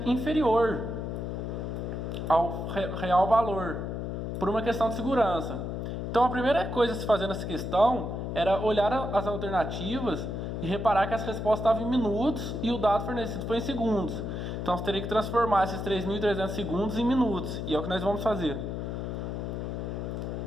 inferior ao real valor, por uma questão de segurança. Então a primeira coisa a se fazer nessa questão era olhar as alternativas e reparar que as respostas estavam em minutos e o dado fornecido foi em segundos. Então você teria que transformar esses 3.300 segundos em minutos, e é o que nós vamos fazer.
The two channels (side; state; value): left; noise; hum, 4 dB below the sound